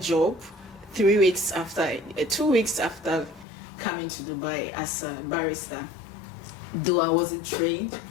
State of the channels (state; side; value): drops out; right; at 3.5 s